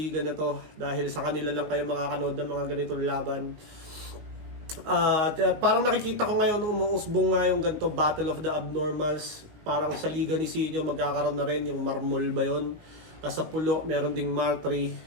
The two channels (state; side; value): late; left; 19 ms